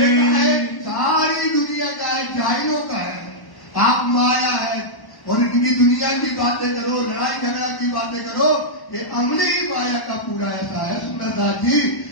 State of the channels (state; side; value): late; right; 1.1 ms